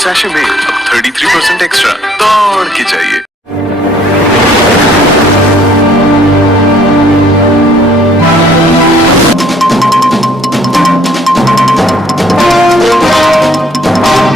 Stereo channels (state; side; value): normal; both; correlation 0.61